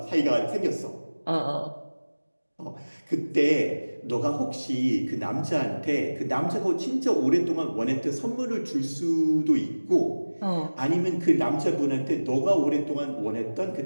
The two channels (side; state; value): both; inverted; correlation -1.00